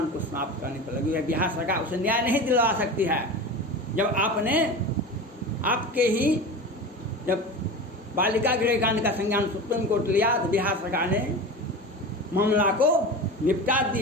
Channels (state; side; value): normal; both; correlation 0.30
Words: को समाप्त करने पर लगी है। बिहार सरकार उसे न्याय नहीं दिलवा सकती है। जब आपके ही जब बालिका गृह कांड का संज्ञान सुप्रीम कोर्ट लिया तो बिहार सरकार ने मामला को निपटा